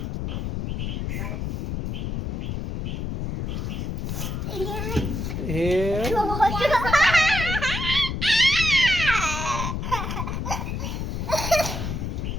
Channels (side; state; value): left; noise; rumble, 3 dB below the sound